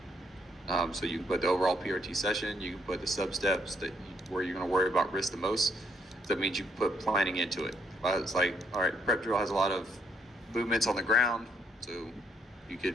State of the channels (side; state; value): both; normal; correlation 0.72